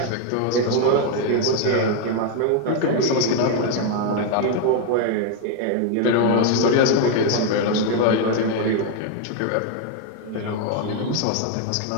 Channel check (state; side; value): different; both; correlation 0.01